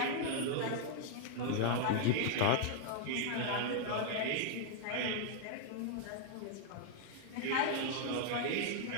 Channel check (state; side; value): different; both; correlation -0.01